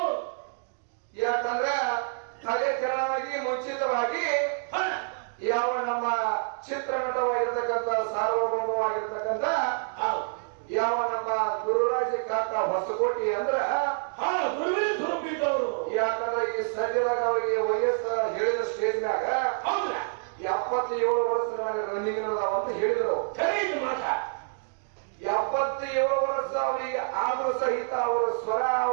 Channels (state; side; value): silent; left; digital silence